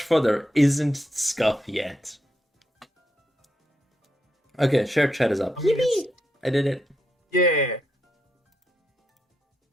for there isn't scuff yet. Okay, share chat is up. I mean, it's... Yippee! I did it. Yeah.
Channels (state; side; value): normal; both; correlation 0.82